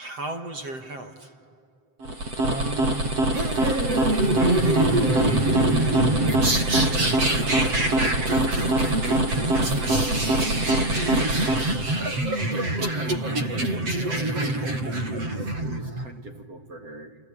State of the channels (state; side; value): late; left; 7.8 ms